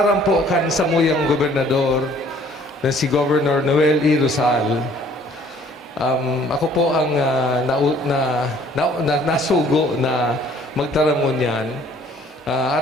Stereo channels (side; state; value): both; normal; correlation 0.57